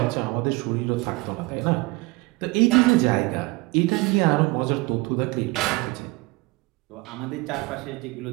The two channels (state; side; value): quieter; left; 23.6 dB